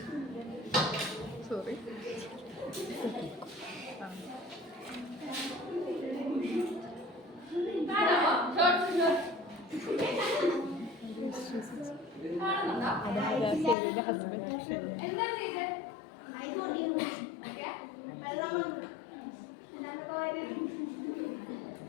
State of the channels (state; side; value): drops out; right; at 13.8 s